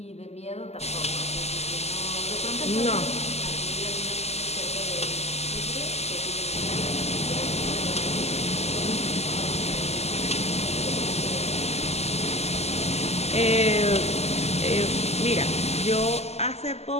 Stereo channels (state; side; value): late; right; 0.30 ms